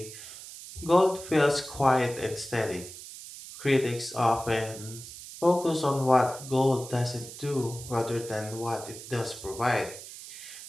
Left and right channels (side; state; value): right; noise; hiss, 13 dB below the sound